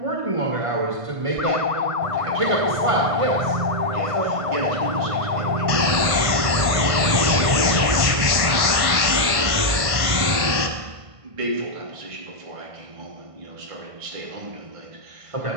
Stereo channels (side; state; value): left; late; 1.5 ms